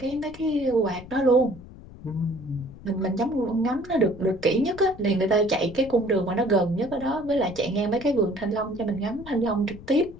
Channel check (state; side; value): noise; left; rumble, 17 dB below the sound